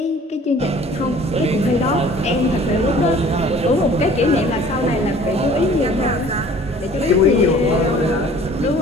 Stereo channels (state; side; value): normal; both; correlation 0.50